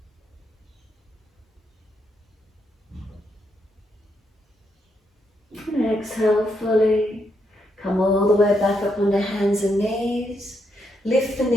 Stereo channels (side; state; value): both; normal; correlation 0.79